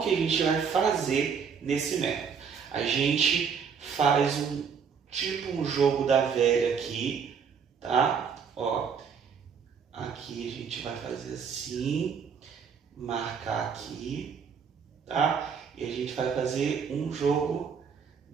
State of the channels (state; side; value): quieter; left; 6.5 dB